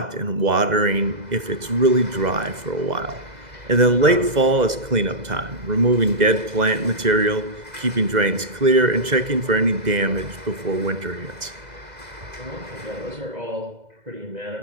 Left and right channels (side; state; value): left; late; 2.0 ms